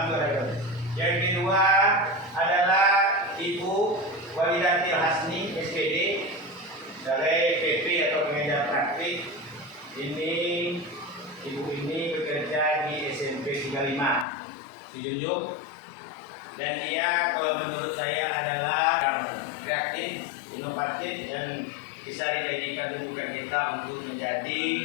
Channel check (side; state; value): right; drops out; at 14.2 s